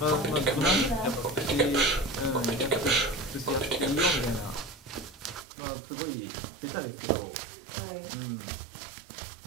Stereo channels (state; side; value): drops out; left; at 5.5 s